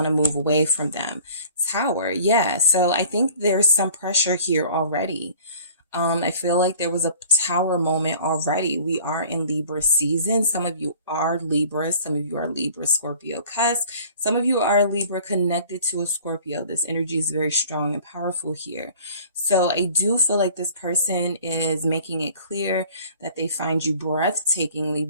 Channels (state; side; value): inverted; both; correlation -0.49